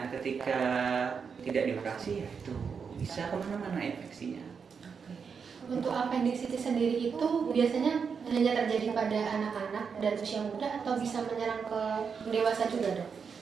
ketika tidak dioperasi ya itu bisa kemana-mana infeksinya. Untuk appendicitis sendiri itu biasanya hanya terjadi pada anak-anak dan usia muda atau bisa menyerang ke dewasa juga dok?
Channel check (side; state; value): left; quieter; 6.1 dB